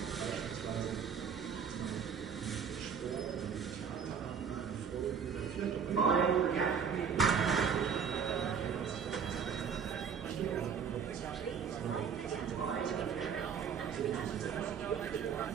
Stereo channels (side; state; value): left; quieter; 7.0 dB